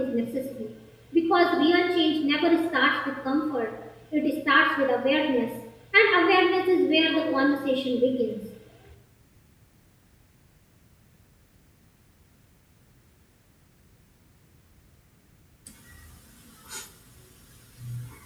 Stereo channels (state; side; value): identical; both; correlation 1.00